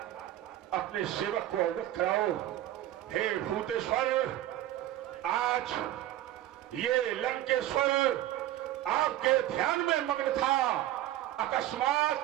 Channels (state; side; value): quieter; left; 13.8 dB